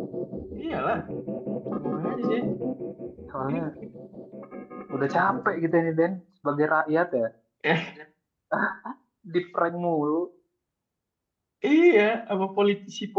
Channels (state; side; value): identical; both; correlation 1.00